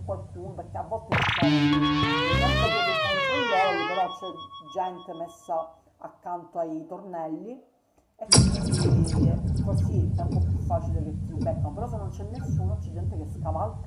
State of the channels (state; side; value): identical; both; correlation 1.00